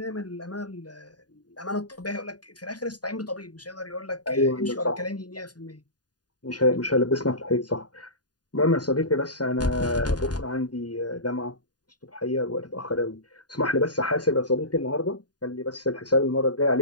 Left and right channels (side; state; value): right; late; 0.69 ms